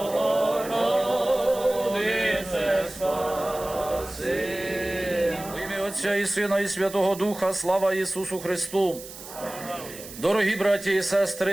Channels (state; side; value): noise; right; hiss, 14 dB below the sound